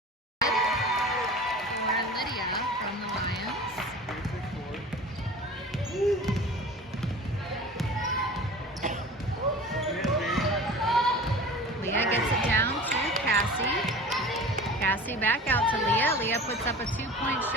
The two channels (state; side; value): normal; both; correlation 0.38